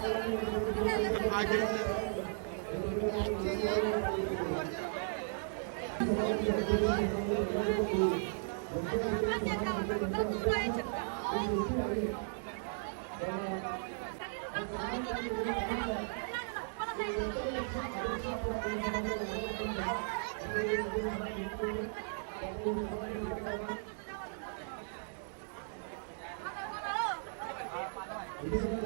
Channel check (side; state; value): left; silent; digital silence